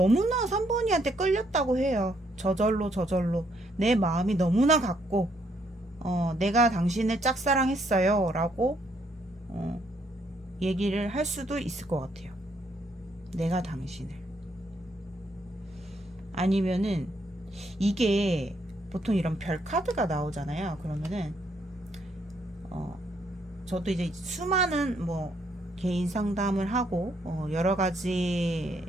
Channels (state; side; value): normal; both; correlation 0.72